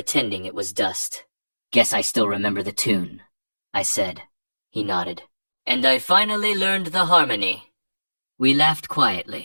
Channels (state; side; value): inverted; both; correlation -1.00